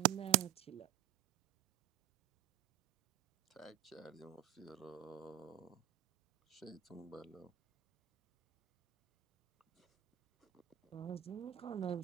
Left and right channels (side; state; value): left; quieter; 14.6 dB